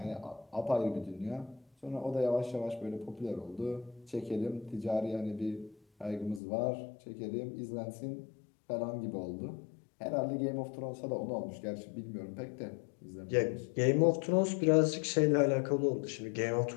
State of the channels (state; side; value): drops out; right; at 6.4 s